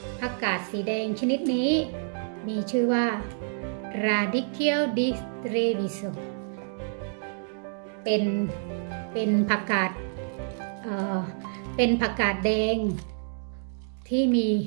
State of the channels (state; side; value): silent; left; digital silence